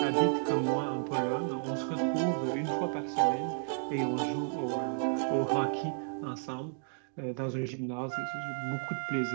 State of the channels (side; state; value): left; silent; digital silence